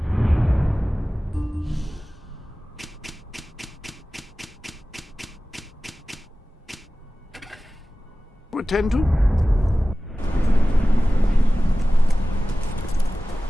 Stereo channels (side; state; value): both; normal; correlation 0.96